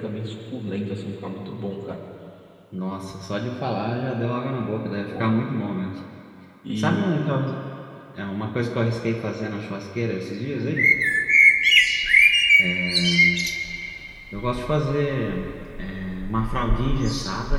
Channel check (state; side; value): identical; both; correlation 1.00